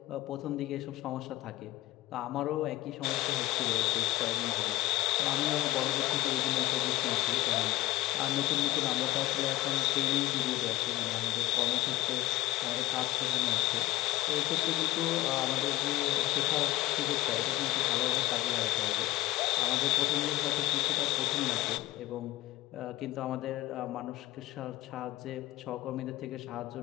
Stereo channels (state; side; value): quieter; right; 17.9 dB